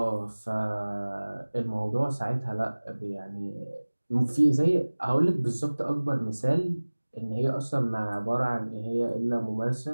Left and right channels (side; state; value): both; inverted; correlation -1.00